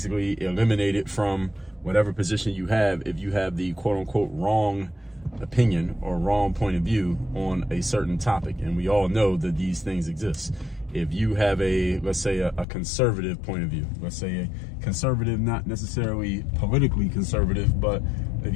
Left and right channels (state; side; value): drops out; right; at 12.7 s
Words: eliminated from whatever position you have if you have the quote-unquote wrong opinion or wrong point of view on a certain topic. And we all know that these things exist. If you have let's say a conservative point of view, let's say a conservative, not necessarily politically conservative, but if